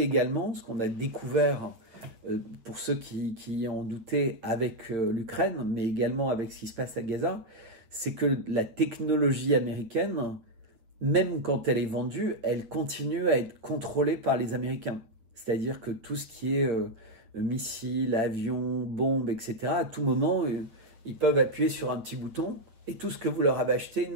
également, ce qu'on a découvert pour ceux qui en doutaient avec l'Ukraine, mais également avec ce qui se passe à Gaza, c'est que la technologie américaine, même quand elle est vendue, elle continue à être contrôlée par les Américains. C'est-à-dire que tout ce qui est missiles, avions, bombes, etc., à tout moment, ils peuvent appuyer sur un petit bouton et tout ce que vous leur avez acheté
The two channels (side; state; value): left; late; 8.5 ms